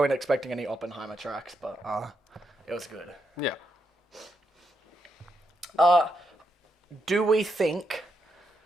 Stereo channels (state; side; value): normal; both; correlation 0.81